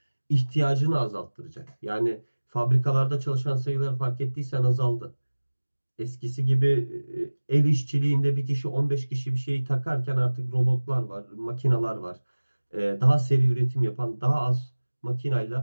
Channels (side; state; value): both; inverted; correlation -1.00